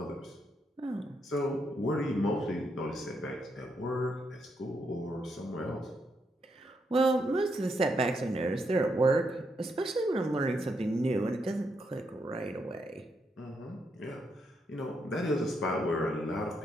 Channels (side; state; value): both; normal; correlation 0.79